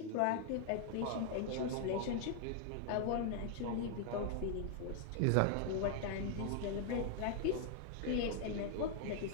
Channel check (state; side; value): different; both; correlation 0.00